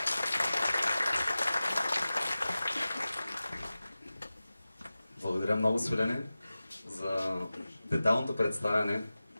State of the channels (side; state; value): both; inverted; correlation -0.96